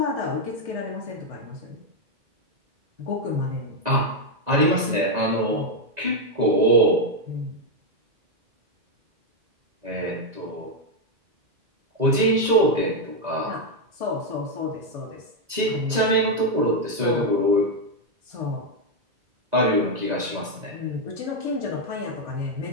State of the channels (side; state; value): left; late; 2.0 ms